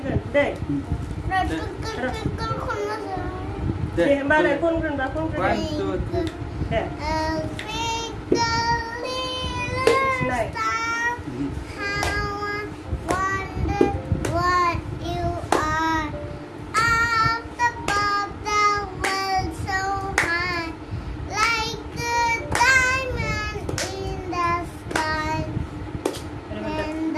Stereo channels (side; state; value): both; identical; correlation 1.00